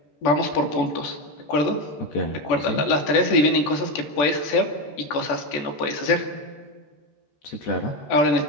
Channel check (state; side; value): late; right; 14 ms